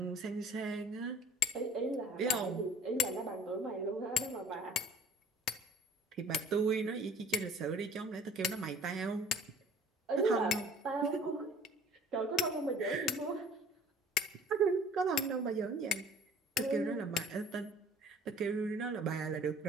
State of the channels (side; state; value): both; normal; correlation 0.49